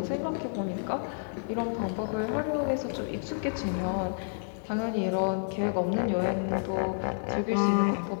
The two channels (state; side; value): silent; right; digital silence